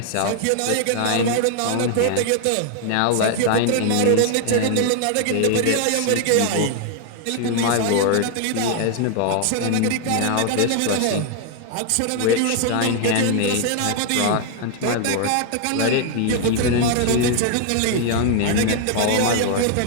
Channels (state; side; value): different; both; correlation 0.00